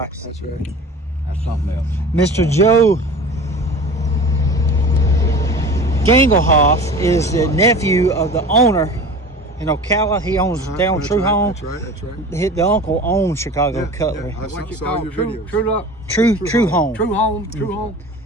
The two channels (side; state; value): both; normal; correlation 0.38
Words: That's right. That's something else. Mr. Joe Gangelhoff is the nephew of the owner in Ocala. He owns down That's True right, Home. That's right. The uncle owns Chicago Cutlery. I What you saw call your True videos. True Home. True Home. True Home.